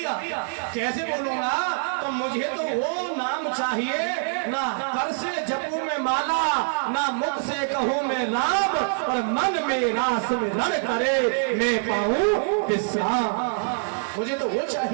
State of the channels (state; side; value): silent; left; 59 dB below the other